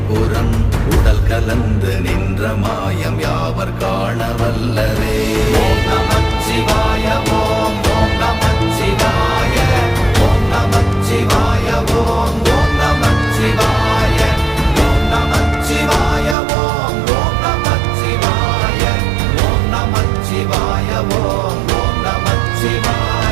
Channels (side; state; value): left; drops out; at 16.4 s